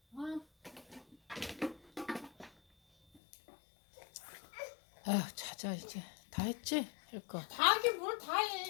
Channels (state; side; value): drops out; right; at 3.2 s